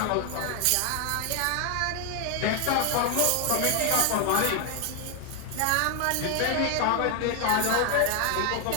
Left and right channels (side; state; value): both; different; correlation 0.01